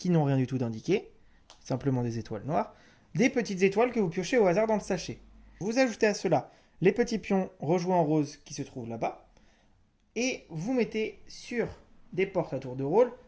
n'ont rien du tout d'indiqué, simplement des étoiles noires, des petites étoiles que vous piochez au hasard dans le sachet. Vous ajoutez à cela les petits pions rejoués en rose qui se trouvent là-bas et vous mettez sur des portes à tour de rôle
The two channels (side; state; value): both; identical; correlation 1.00